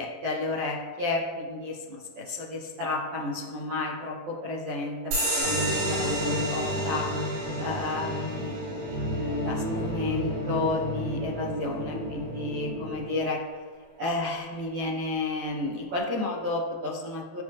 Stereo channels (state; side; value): late; left; 18 ms